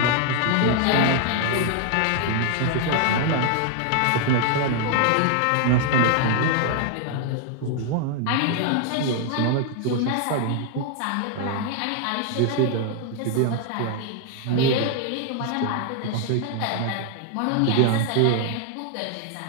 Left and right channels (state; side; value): different; both; correlation 0.00